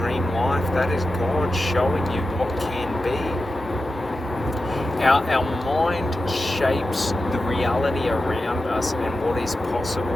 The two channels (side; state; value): both; normal; correlation 0.91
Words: life, that is God showing you what can be. Our mind shapes the reality around us and what is